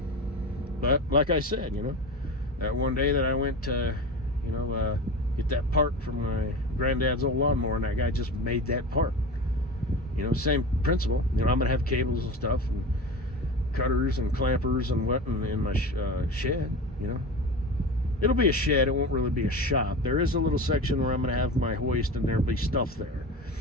But like I said, you know, that one day that I went to, you know, get that part from my granddad's old lawnmower, and that guy just made that part. You know, same principle. You know, I'm gonna have cables and stuff, and cutters and clampers and what in my shed. You know, it'll be a shed. It won't really be a shop. There is a little section where I'm gonna have my hoist, and there'll be stuff there,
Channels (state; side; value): normal; both; correlation 0.29